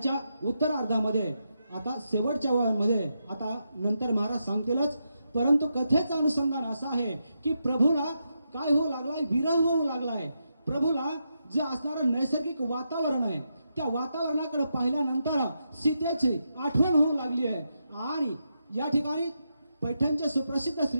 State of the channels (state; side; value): inverted; both; correlation -0.84